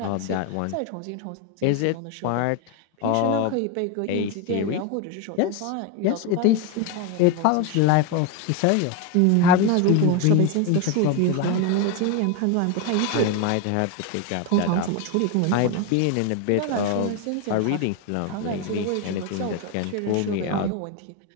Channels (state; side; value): different; both; correlation 0.02